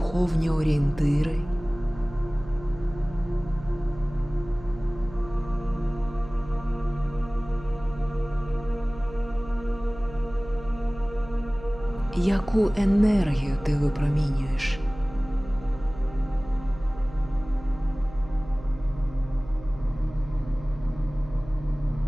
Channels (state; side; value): noise; right; hum, 16 dB below the sound